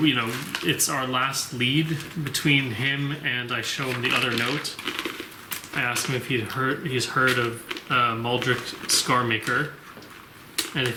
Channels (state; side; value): identical; both; correlation 1.00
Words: our last lead between him, and I show him the other note. I ask him if he's heard of Muldrick Scarmaker, and